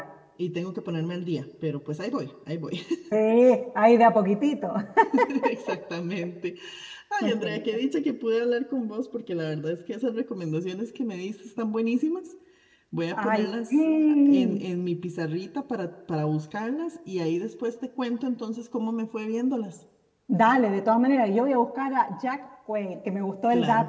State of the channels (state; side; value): identical; both; correlation 1.00